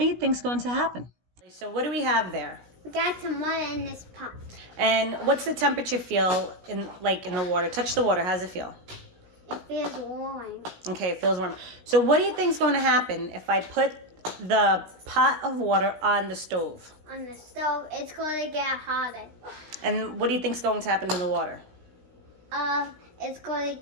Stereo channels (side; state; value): left; late; 16 ms